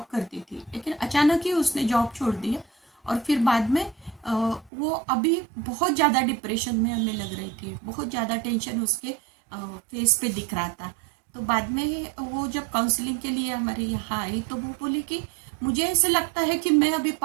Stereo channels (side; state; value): left; drops out; at 4.7 s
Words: करती थी। लेकिन अचानक ही उसने जॉब छोड़ दिया और फिर बाद में वो अभी बहुत ज़्यादा डिप्रेशन में हमें लग रही थी। बहुत ज़्यादा टेंशन उसके फेस पे दिख रहा था। तो बाद में वो जब काउंसलिंग के लिए हमारे यहाँ आई तो वो बोली कि मुझे ऐसे लगता है कि मैं अभी